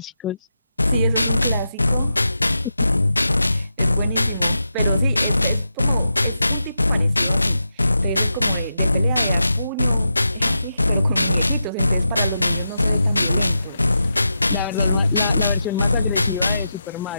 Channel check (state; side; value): inverted; both; correlation -0.88